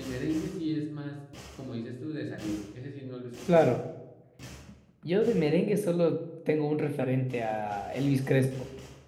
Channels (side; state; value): both; identical; correlation 1.00